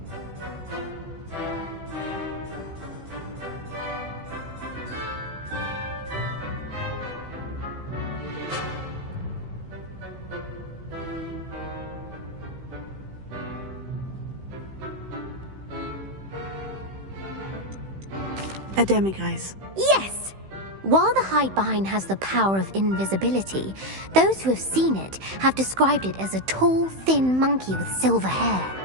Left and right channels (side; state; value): left; late; 15 ms